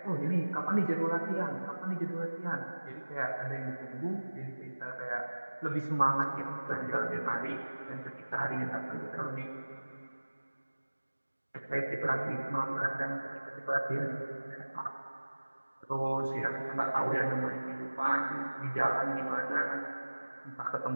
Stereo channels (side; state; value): both; inverted; correlation -1.00